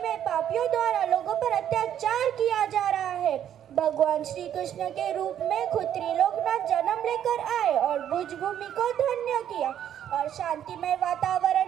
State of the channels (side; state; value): left; quieter; 10.2 dB